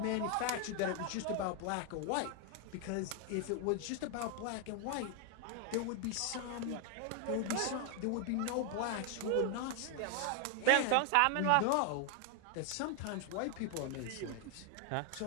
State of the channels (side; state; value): both; different; correlation 0.00